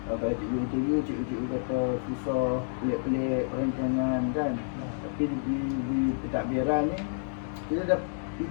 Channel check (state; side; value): silent; right; digital silence